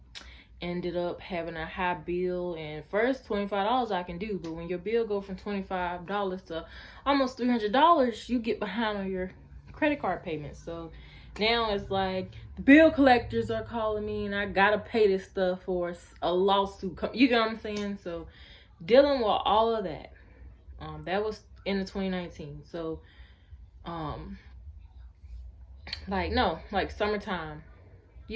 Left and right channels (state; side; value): identical; both; correlation 1.00